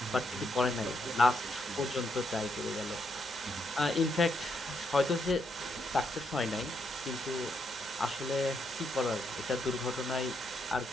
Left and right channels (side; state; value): right; noise; hum, 24 dB below the sound